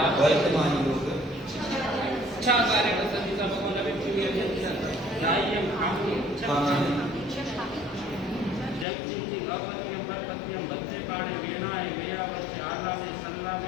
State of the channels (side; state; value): right; drops out; at 8.8 s